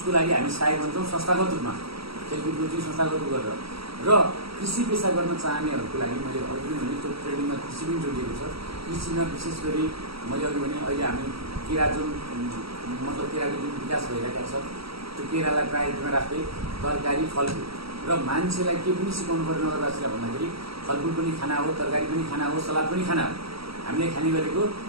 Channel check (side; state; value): left; late; 0.76 ms